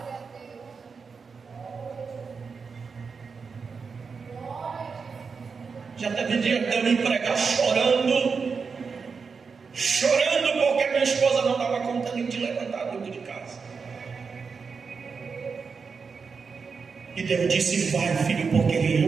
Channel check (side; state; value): left; quieter; 5.3 dB